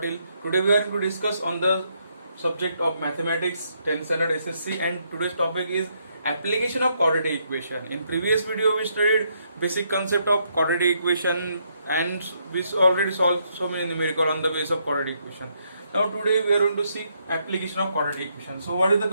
Today we are going to discuss on the subject of mathematics 10th standard SSC and today's topic is application of quadratic equation. In previous video we studied basic concept of quadratic equation and we already solved so many numerical on the base of quadratic equation. Now today we are going to see application of quadratic equation. So what is the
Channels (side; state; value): both; inverted; correlation -0.75